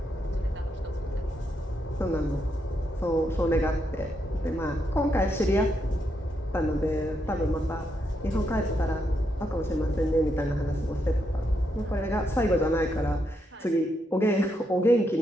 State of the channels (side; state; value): both; normal; correlation 0.80